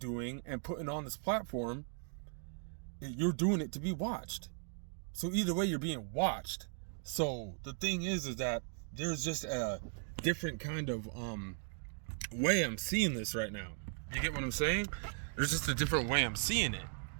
and putting on this platform, you're doing it to be watched. So either way, you're being watched. So the thing is that there's just a different kind of way I'm seeing this right now. You get what I'm saying? There's just a different way I'm seeing it.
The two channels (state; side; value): silent; left; 53 dB below the other